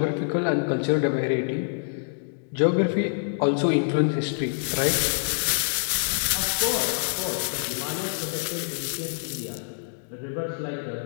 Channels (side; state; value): right; silent; digital silence